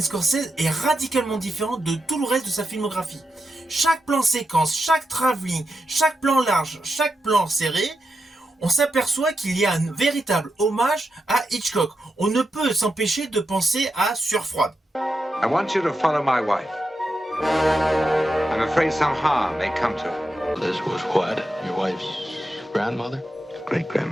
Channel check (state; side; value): normal; both; correlation 0.87